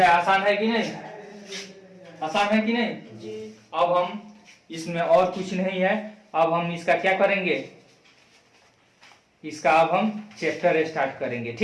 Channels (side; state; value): both; identical; correlation 1.00